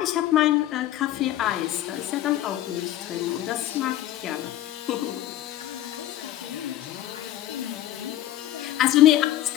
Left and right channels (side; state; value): right; quieter; 13.5 dB